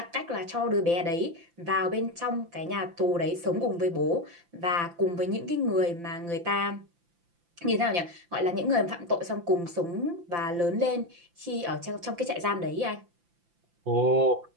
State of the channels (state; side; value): late; left; 5.8 ms